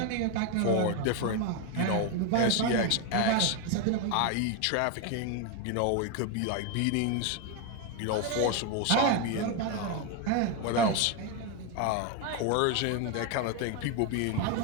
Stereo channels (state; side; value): different; both; correlation 0.02